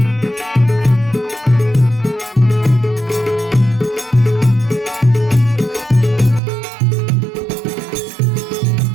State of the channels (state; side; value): drops out; left; at 6.4 s